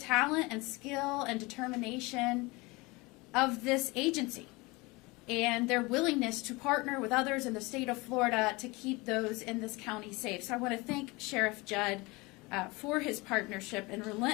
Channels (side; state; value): right; quieter; 24.2 dB